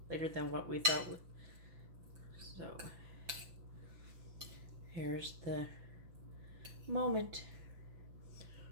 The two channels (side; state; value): left; late; 6.0 ms